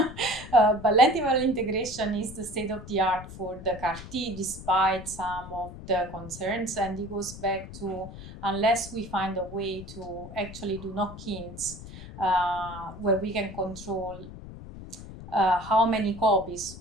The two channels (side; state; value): left; noise; rumble, 13 dB below the sound